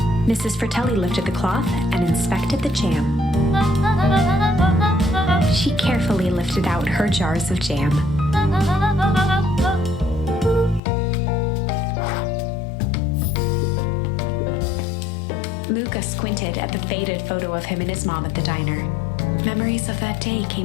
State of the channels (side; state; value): right; drops out; at 10.8 s